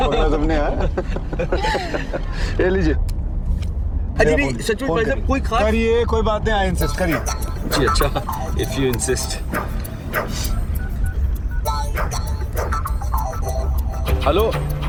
तुमने यार। ये लीजिए। अजी नहीं, सच में भाई साहब कोई खास करिए, कोई बात नहीं, आई इंसिस्ट, करिए। जी अच्छा, इफ यू इंसिस्ट। हेलो,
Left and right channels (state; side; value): identical; both; correlation 1.00